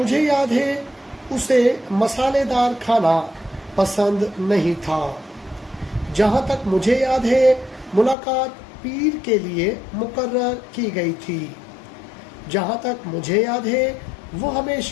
याद है उसे मसालेदार खाना पसंद नहीं था। जहां तक मुझे याद है मुलाकात पीर के लिए मुकर्रर की गई थी। जहां तक मुझे याद है वो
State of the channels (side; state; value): right; drops out; at 8.2 s